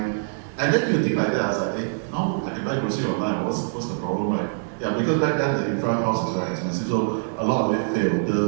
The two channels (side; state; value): left; silent; digital silence